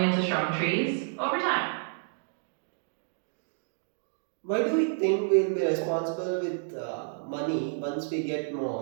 into strong trees over time. Why do we think we'll be responsible with money once we get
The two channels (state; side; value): silent; left; digital silence